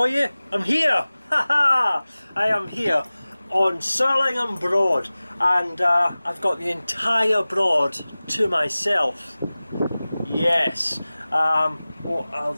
you. I'm here! Haha! I am here on Surlingham Broad, and I've got the entire broad to myself. Yes. Well, I'll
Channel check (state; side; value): inverted; both; correlation -0.98